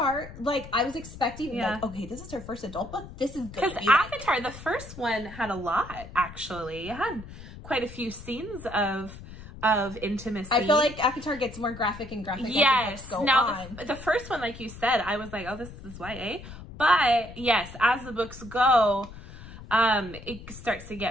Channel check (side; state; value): left; noise; rumble, 15 dB below the sound